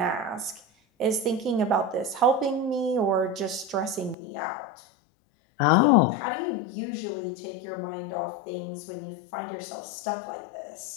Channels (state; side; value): drops out; right; at 4.2 s